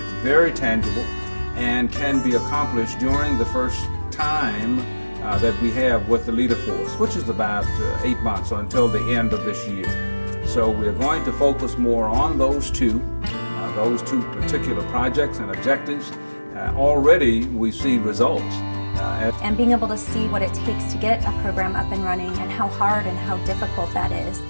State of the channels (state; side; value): inverted; both; correlation -1.00